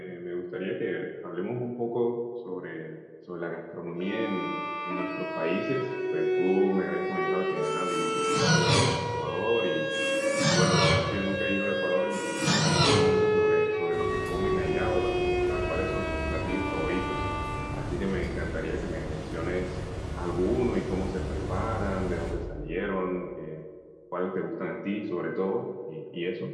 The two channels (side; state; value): both; identical; correlation 1.00